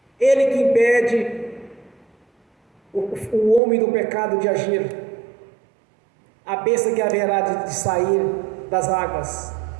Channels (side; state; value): left; drops out; at 3.6 s